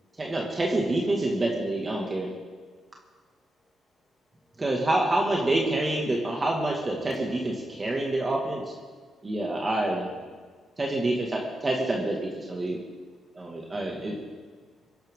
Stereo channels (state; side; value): normal; both; correlation 0.89